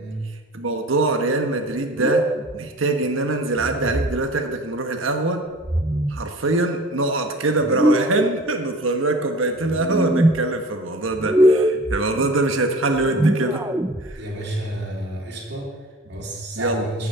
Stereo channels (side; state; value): both; normal; correlation 0.41